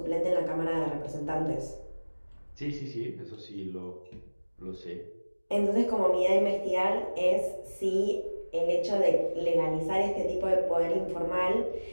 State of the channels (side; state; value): both; inverted; correlation -1.00